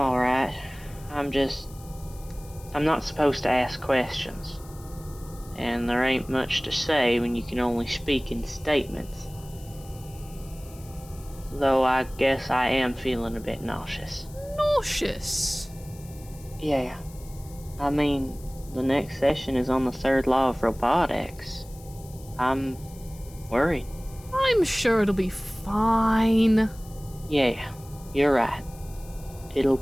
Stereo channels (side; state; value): left; noise; hiss, 22 dB below the sound